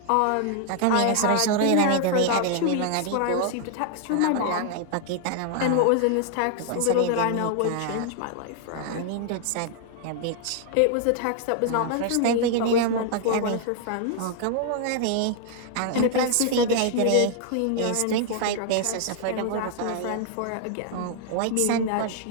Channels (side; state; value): both; different; correlation 0.00